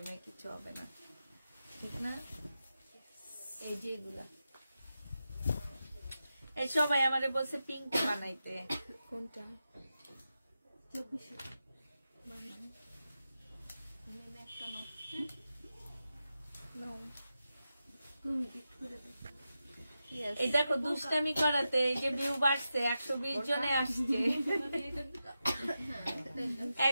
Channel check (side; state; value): both; inverted; correlation -0.90